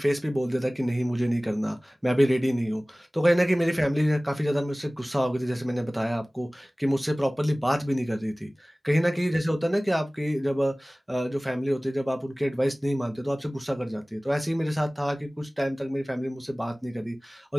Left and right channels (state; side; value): normal; both; correlation 0.98